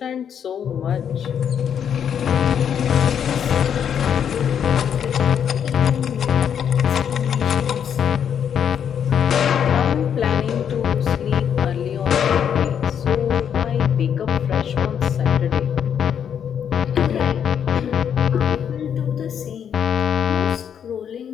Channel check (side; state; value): right; quieter; 8.4 dB